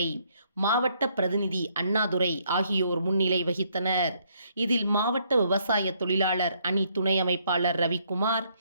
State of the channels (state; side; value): inverted; both; correlation -0.70